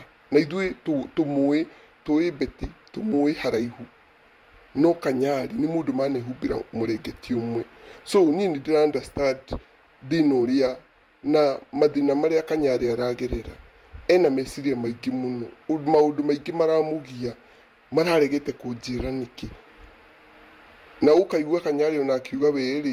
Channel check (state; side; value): identical; both; correlation 1.00